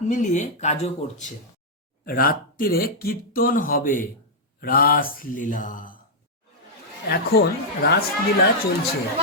মিলিয়ে কাজও করছে। রাত্রিরে কীর্তন হবে, রাসলীলা। এখন রাসলীলা চলছে,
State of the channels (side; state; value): both; normal; correlation -0.06